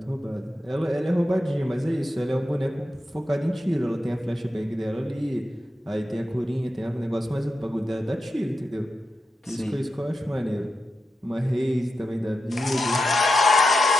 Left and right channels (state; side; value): normal; both; correlation 0.88